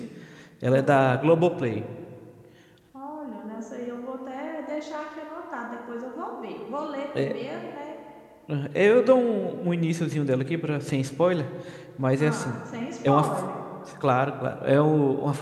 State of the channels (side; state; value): both; identical; correlation 1.00